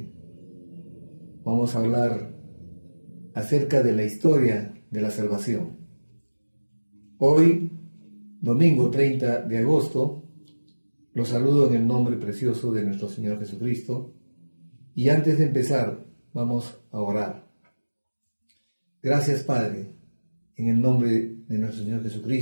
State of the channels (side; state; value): both; inverted; correlation -1.00